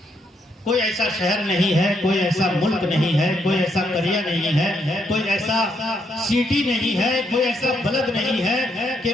कोई ऐसा शहर नहीं है, कोई ऐसा मुल्क नहीं है, कोई ऐसा करिया नहीं है, कोई ऐसा सिटी नहीं है, कोई ऐसा बलद नहीं है कि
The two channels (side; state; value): both; normal; correlation 0.76